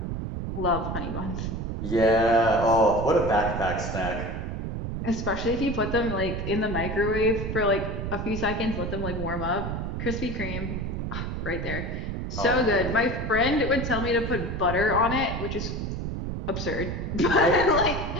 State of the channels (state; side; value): noise; right; rumble, 4 dB below the sound